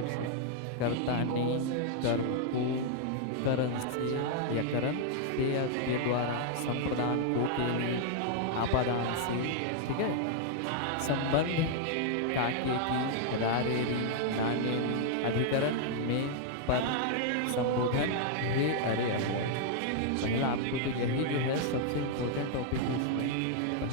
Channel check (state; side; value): different; both; correlation 0.00